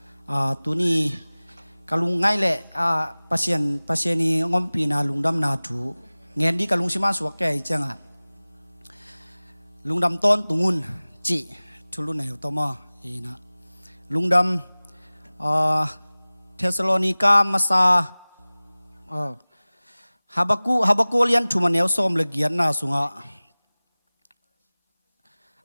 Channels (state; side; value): inverted; both; correlation -0.99